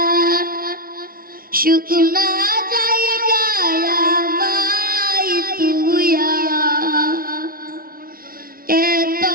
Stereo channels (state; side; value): late; left; 0.43 ms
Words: শুকনা যাইয়া বাই তুইয়া এত